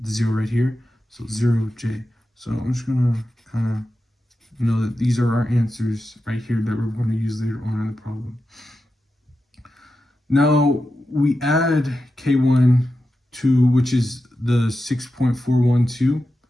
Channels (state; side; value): normal; both; correlation 0.90